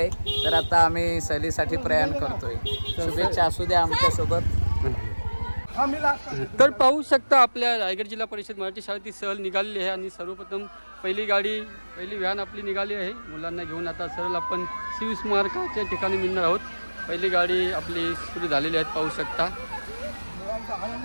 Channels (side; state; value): both; inverted; correlation -1.00